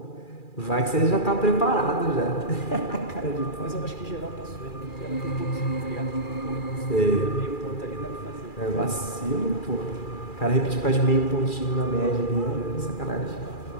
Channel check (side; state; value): right; late; 2.4 ms